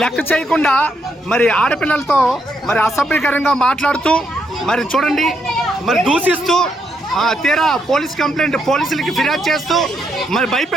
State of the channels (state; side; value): normal; both; correlation 0.77